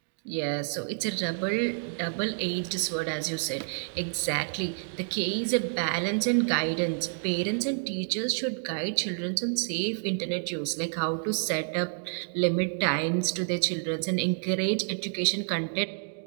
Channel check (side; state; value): left; silent; digital silence